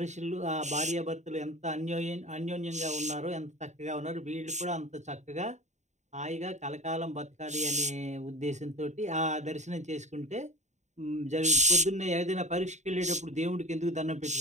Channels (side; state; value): left; late; 0.34 ms